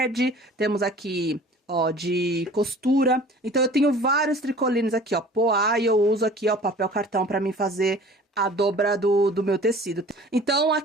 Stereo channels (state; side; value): normal; both; correlation 0.46